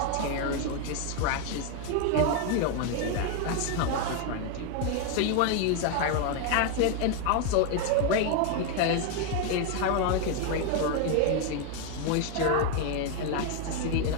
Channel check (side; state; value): both; different; correlation 0.01